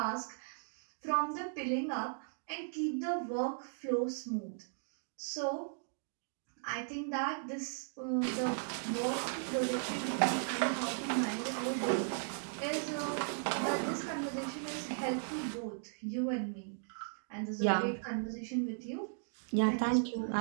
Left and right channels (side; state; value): left; silent; digital silence